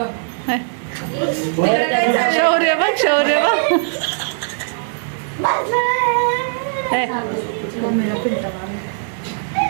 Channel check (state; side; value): silent; left; 58 dB below the other